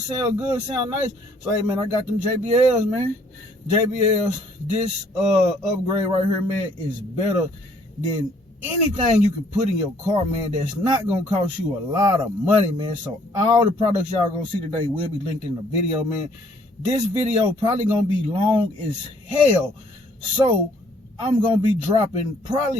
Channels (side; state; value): both; normal; correlation 0.63